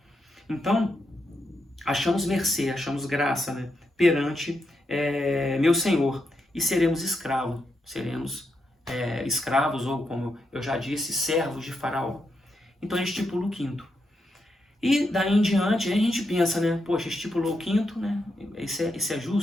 Então, achamos mercê, achamos graça, né, perante meu Senhor, e seremos escravos, ou como eu já disse, servos de Faraó. Então a gente estipula o quinto. E daí em diante, a gente pensa, né, poxa, estipulou o quinto, né, isso é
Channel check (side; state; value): both; normal; correlation 0.83